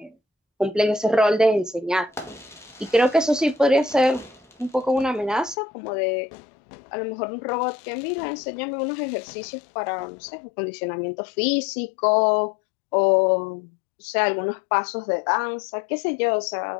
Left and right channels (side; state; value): right; drops out; at 5.6 s